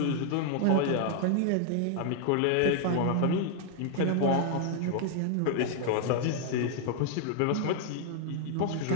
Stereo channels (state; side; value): different; both; correlation 0.00